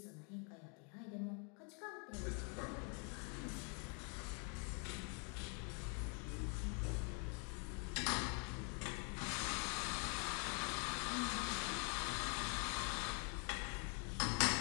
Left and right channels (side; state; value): right; quieter; 37.3 dB